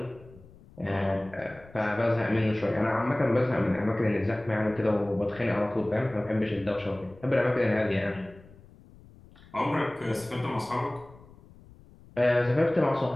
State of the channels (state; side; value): noise; left; rumble, 23 dB below the sound